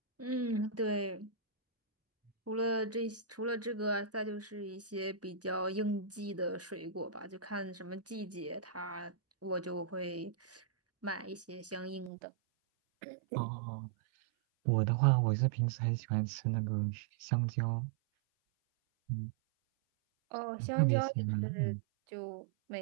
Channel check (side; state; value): left; drops out; at 12.1 s